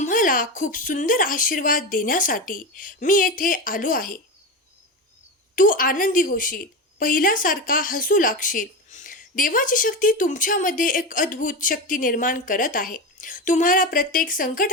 खूप सुंदर आशीर्वाद देण्यासाठी मी येथे आलो आहे. तू आनंदी होशील, पहिल्यासारखा हसू लागशील. देवाची शक्ती तुमच्यामध्ये एक अद्भुत शक्ती निर्माण करत आहे. तुम्हाला प्रत्येक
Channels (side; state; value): both; normal; correlation 0.20